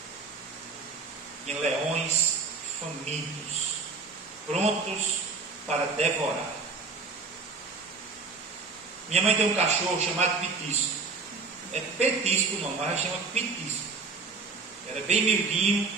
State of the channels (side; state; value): left; quieter; 4.3 dB